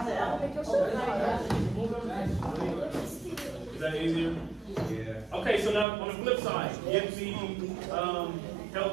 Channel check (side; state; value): left; drops out; at 5.9 s